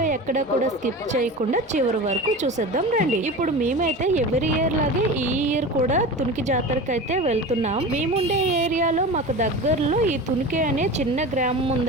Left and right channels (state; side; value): normal; both; correlation 0.31